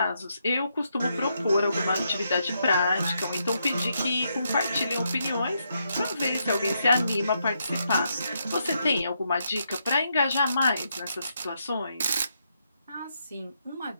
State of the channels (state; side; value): inverted; both; correlation -0.79